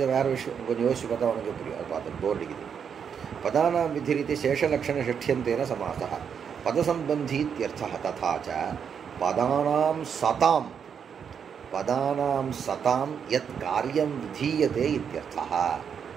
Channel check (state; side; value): quieter; left; 7.3 dB